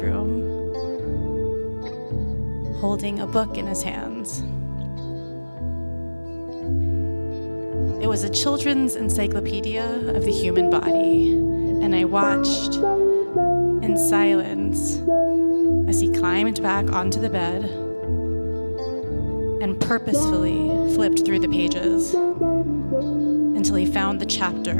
holding a book in his hands. It was a children's encyclopedia of the human body, and I watched in silence as he climbed back onto the bed and purposefully flipped through the pages until he found the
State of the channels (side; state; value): both; inverted; correlation -1.00